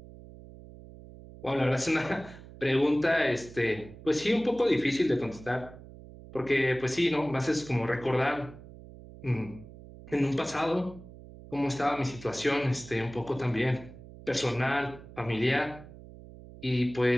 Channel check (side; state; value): right; noise; hum, 17 dB below the sound